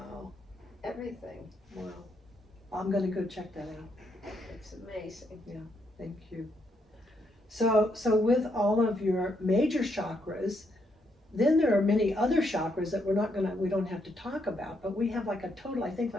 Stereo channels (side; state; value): both; normal; correlation 0.76